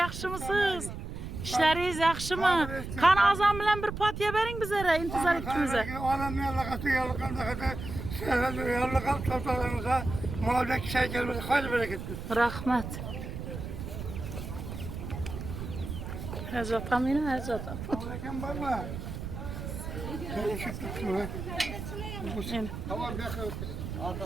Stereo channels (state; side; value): noise; right; rumble, 7 dB below the sound